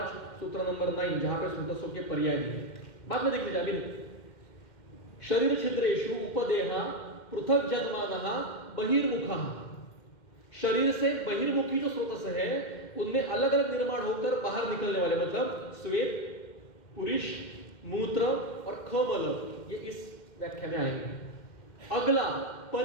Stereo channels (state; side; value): late; right; 2.1 ms